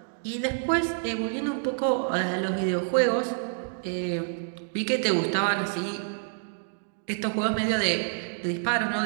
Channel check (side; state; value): left; silent; digital silence